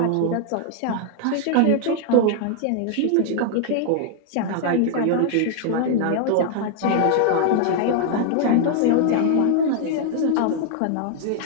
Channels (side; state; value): both; different; correlation 0.00